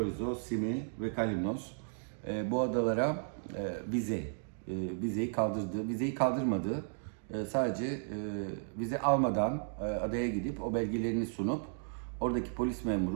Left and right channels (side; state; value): left; silent; digital silence